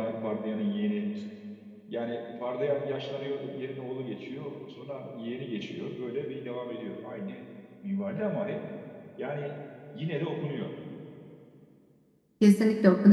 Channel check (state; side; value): identical; both; correlation 1.00